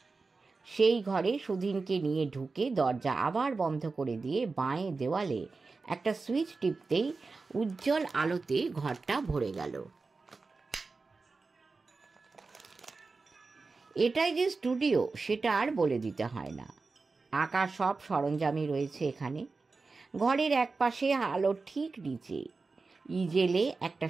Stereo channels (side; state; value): left; quieter; 4.1 dB